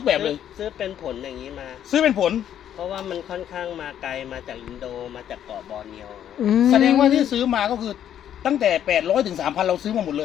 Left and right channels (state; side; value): quieter; right; 10.2 dB